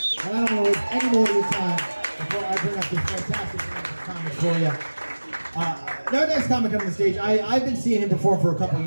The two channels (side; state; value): both; inverted; correlation -1.00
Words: and I don't want to waste any more of your time before I bring up this fantastic comic for you. Our next comic coming to the stage, I've been seeing him perform for a couple of